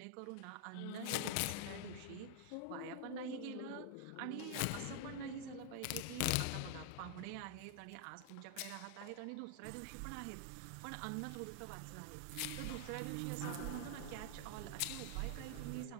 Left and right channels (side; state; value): both; different; correlation 0.00